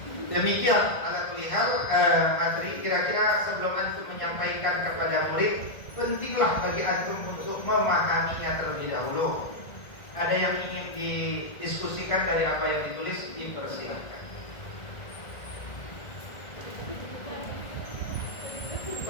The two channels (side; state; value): right; late; 1.7 ms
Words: Demikian ala kulli hal materi. Kira-kira sebelum antum menyampaikan kepada murid, pentinglah bagi antum untuk memahaminya terlebih dahulu. Ada yang ingin didiskusikan dari apa yang ditulis, dipersilakan.